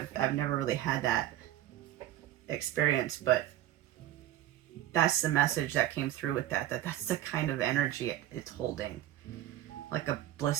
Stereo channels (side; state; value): left; quieter; 12.9 dB